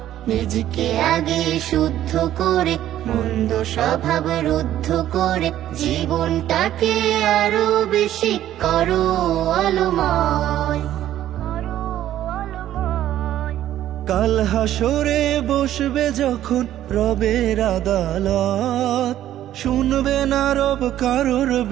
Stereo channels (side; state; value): left; quieter; 12.4 dB